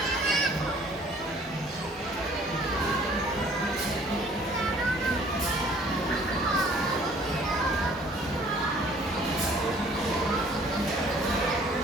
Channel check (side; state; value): both; normal; correlation 0.56